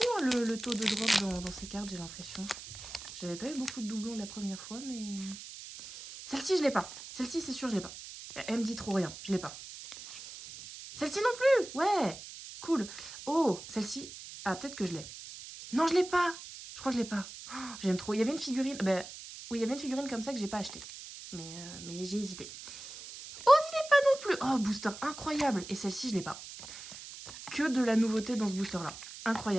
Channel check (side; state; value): right; noise; hiss, 13 dB below the sound